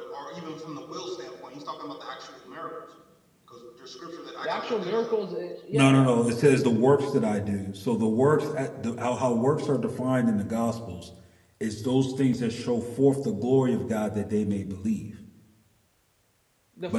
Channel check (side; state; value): both; identical; correlation 1.00